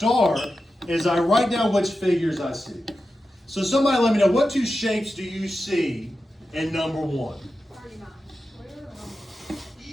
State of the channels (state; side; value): normal; both; correlation 0.91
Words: is I write down which figures I see. So somebody let me know, what 2 shapes do you see in number 1?